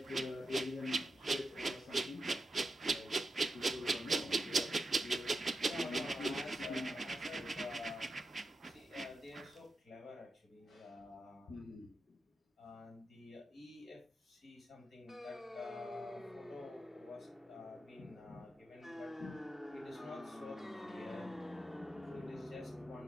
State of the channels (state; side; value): normal; both; correlation 0.87